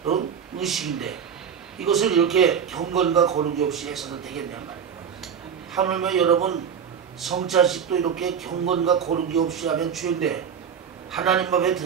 의식인데 이것을 이렇게 경건과 거룩이 없이 해서는 되겠냐 말이에요. 하물며 여러분 성찬식도 이렇게 경건과 거룩이 없이 하면 죄인데 하나님 앞에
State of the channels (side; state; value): left; quieter; 7.6 dB